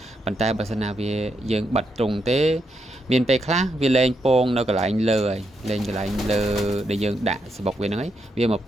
ប៉ុន្តែបើសិនណាវាយើងបិទត្រង់ទេមានពេលខ្លះវាលែងពងនៅកន្លែងលើហើយលែងកន្លែងលើដែលយើងដាក់សបុកវាហ្នឹងហើយវាមក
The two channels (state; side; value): normal; both; correlation 0.81